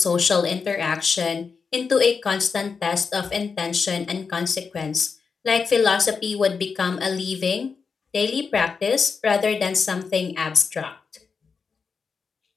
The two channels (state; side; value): quieter; right; 5.3 dB